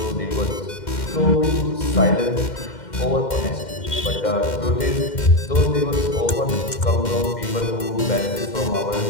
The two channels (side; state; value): right; late; 2.1 ms